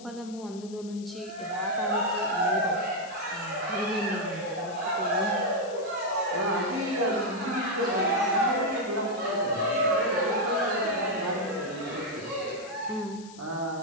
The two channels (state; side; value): noise; left; hiss, 20 dB below the sound